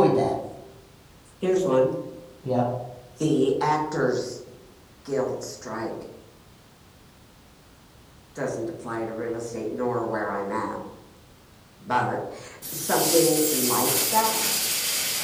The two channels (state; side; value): identical; both; correlation 1.00